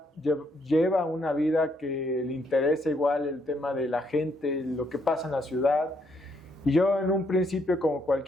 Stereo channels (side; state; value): both; normal; correlation 0.73